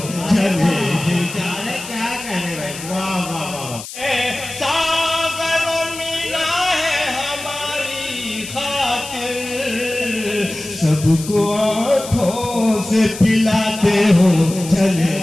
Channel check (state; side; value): noise; left; hiss, 12 dB below the sound